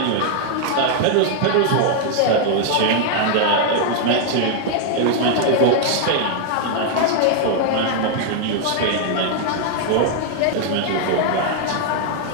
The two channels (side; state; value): both; different; correlation 0.00